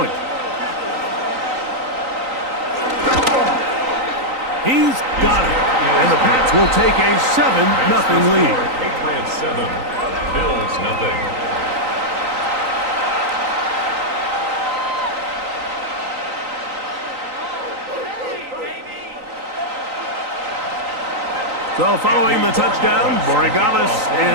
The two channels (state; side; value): late; left; 3.9 ms